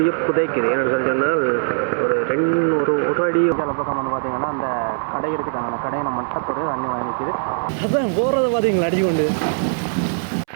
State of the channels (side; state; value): left; silent; 65 dB below the other